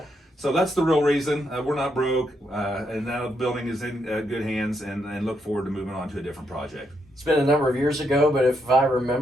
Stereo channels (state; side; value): normal; both; correlation 0.78